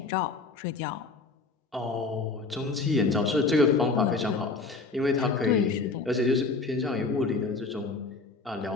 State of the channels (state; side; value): quieter; right; 4.0 dB